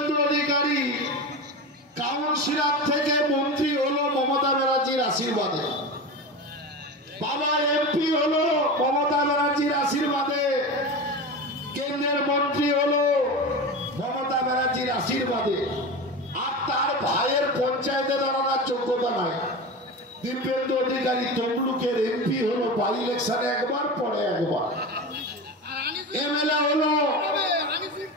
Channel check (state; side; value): normal; both; correlation 0.25